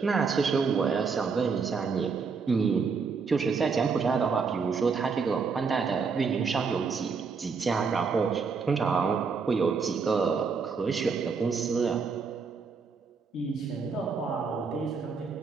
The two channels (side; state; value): left; quieter; 5.2 dB